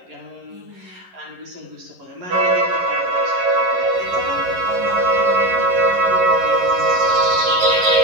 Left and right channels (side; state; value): left; late; 11 ms